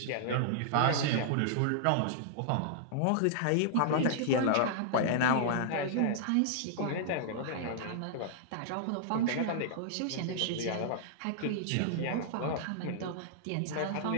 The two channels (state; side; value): different; both; correlation -0.01